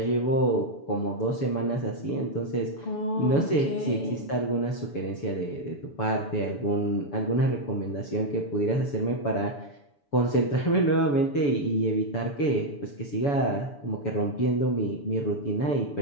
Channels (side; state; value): right; late; 7.0 ms